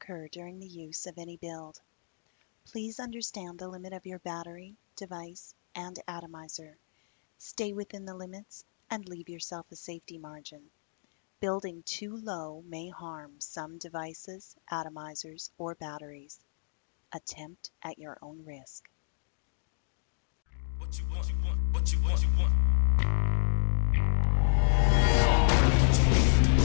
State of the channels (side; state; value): right; silent; digital silence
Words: during the use of any build. Please understand the limit of your battery, device, and atomizer. Stay within the limits and leave yourself a safety margin. Building too low may harm some devices, atomizers, or batteries. Attempt at your own risk.